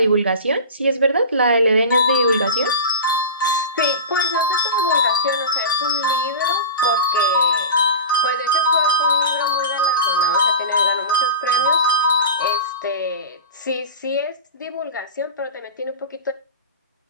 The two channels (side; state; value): both; inverted; correlation -0.30